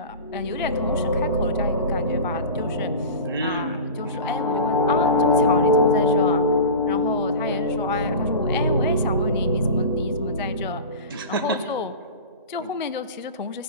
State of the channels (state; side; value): inverted; both; correlation -0.31